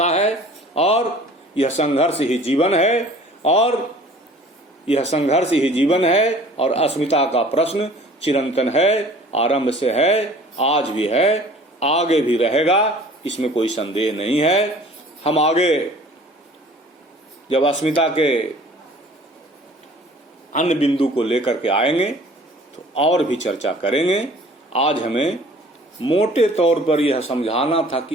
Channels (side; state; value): both; normal; correlation 0.49